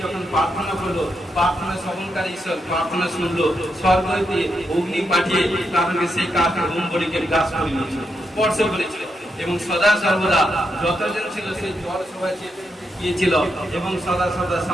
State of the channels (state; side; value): normal; both; correlation 0.82